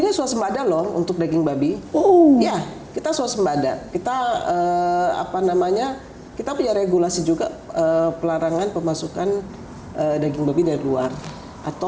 swasembada loh untuk daging babi. Ya, kita swasembada. Kita kita punya regulasi juga pelarangan pemasukan daging babi dari luar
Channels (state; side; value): identical; both; correlation 1.00